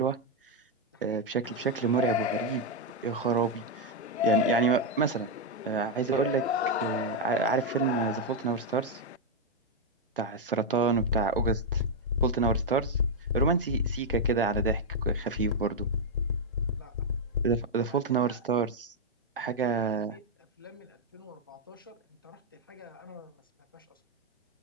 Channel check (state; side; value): normal; both; correlation 0.01